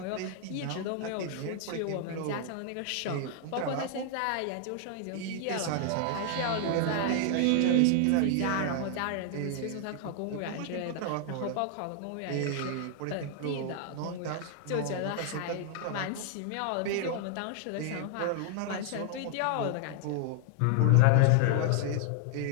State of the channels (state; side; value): different; both; correlation 0.00